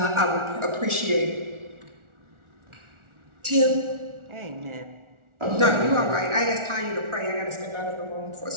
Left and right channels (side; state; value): left; late; 1.4 ms